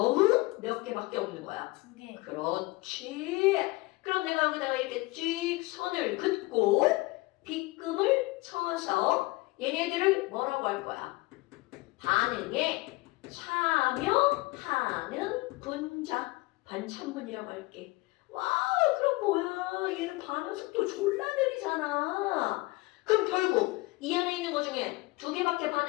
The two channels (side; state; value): right; quieter; 22.2 dB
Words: 몇 개밖에 없는 거야? 2개. 그렇지. 그럼 내가 여기다가 이렇게 쭉 선을 긋고 빗금을 쳐서 얘네들을 뭐라고 할 거야? 반응에 참여하는 분자. 반참분이라고 할게. 와, 그럼 뭐야? 얘는 반응 속도 졸라 느리잖아. 그럼 결국 이 안에 있는 것 중에 2개밖에